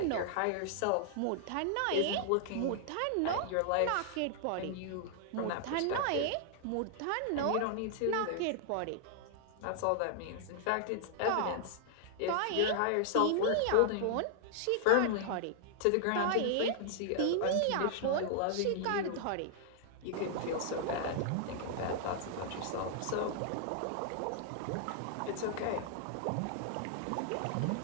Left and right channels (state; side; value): different; both; correlation 0.00